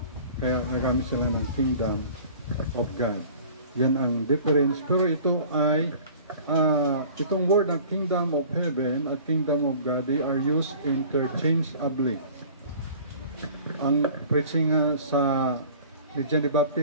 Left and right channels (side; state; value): both; inverted; correlation -0.46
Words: Kaya nagamit sila ng Kingdom of God. Yan ang difference. Pero ito ay itong word ng Kingdom of Heaven at Kingdom of God, they are used interchangeably. Ang preaching sa ni John the